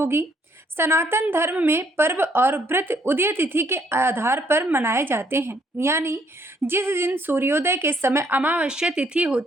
सनातन धर्म में पर्व और व्रत उदय तिथि के आधार पर मनाए जाते हैं, यानी जिस दिन सूर्योदय के समय अमावस्या तिथि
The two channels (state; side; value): normal; both; correlation 0.68